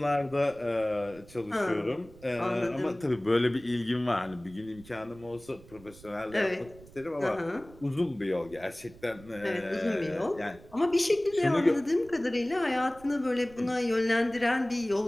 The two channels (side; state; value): right; noise; rumble, 21 dB below the sound